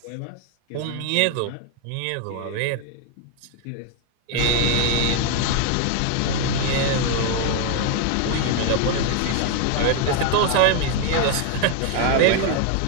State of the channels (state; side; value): different; both; correlation 0.01